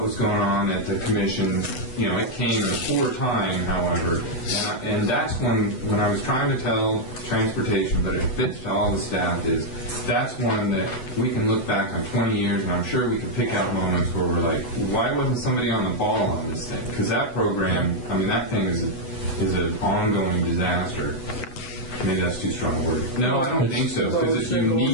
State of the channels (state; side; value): late; right; 8.0 ms